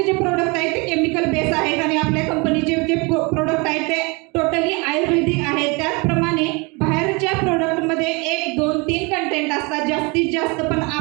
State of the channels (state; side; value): quieter; left; 28.6 dB